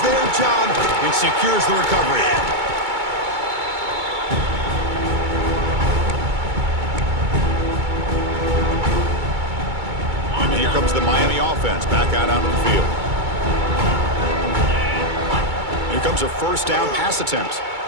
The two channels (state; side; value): late; left; 2.2 ms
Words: their job and secures the recovery. comes the Miami offense back out onto the field. Here comes a first down pass attempt.